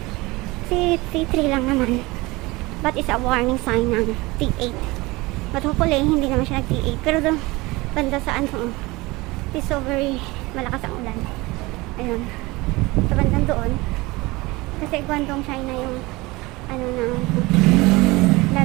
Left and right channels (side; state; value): left; quieter; 22.2 dB